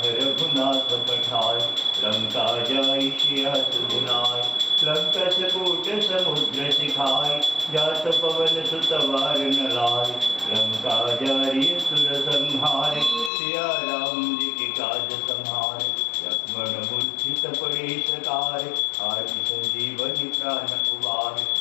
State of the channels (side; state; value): right; drops out; at 13.3 s